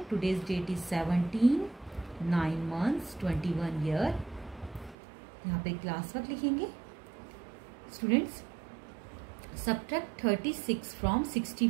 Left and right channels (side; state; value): left; drops out; at 5.0 s